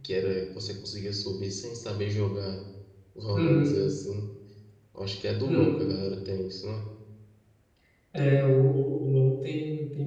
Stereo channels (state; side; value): identical; both; correlation 1.00